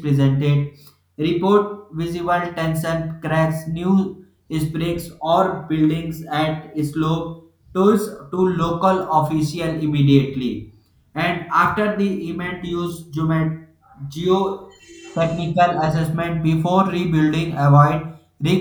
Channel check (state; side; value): identical; both; correlation 1.00